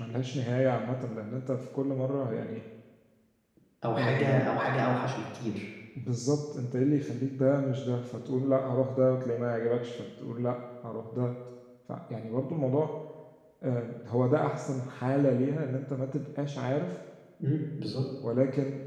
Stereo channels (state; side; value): identical; both; correlation 1.00